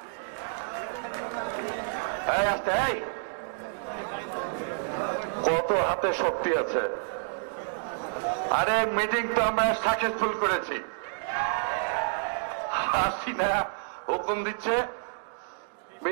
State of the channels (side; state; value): left; silent; digital silence